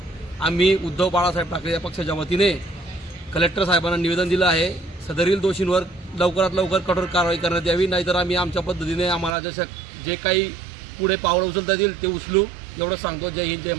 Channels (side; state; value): left; drops out; at 9.3 s